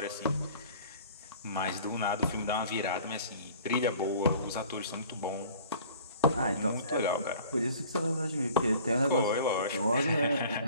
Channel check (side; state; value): both; inverted; correlation -0.49